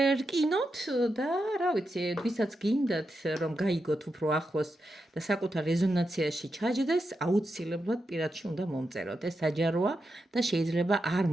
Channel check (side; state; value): both; normal; correlation 0.87